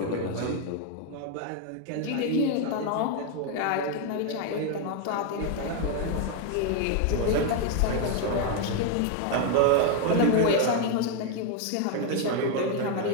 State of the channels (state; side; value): different; both; correlation 0.01